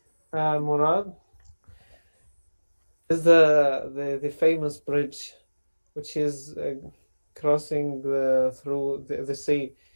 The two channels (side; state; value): both; inverted; correlation -1.00